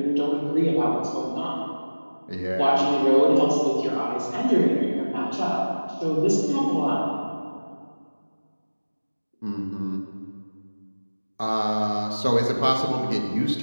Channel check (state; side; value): inverted; both; correlation -1.00